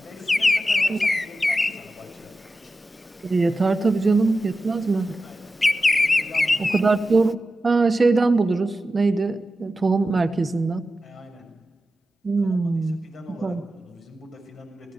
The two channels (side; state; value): both; normal; correlation 0.92